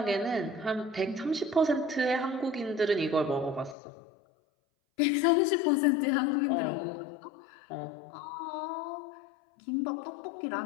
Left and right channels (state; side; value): drops out; right; at 3.8 s